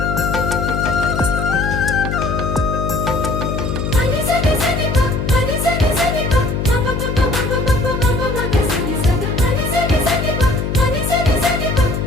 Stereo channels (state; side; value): noise; left; hum, 2 dB below the sound